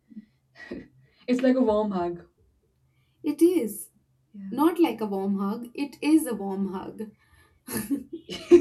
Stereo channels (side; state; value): both; identical; correlation 1.00